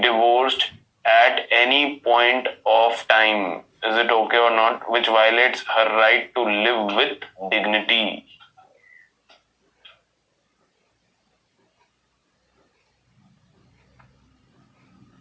at any point of time. Is it okay or not? Which violates her right to live with dignity.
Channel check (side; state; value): both; identical; correlation 1.00